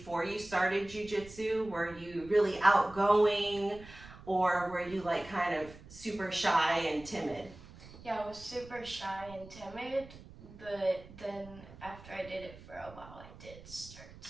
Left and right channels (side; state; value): right; noise; rumble, 18 dB below the sound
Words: you started Jiu Jitsu? Were you really outgoing, or were you like kind of super shy and timid? Yeah, I was super shy and timid, but then after I did it for a while, I did start